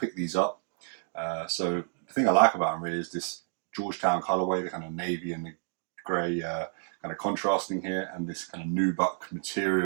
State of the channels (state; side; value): silent; left; digital silence